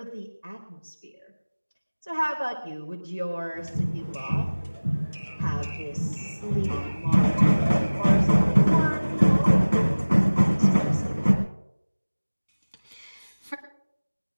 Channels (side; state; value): both; inverted; correlation -1.00